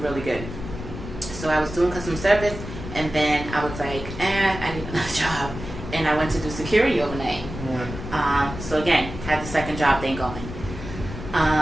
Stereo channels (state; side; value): noise; left; rumble, 9 dB below the sound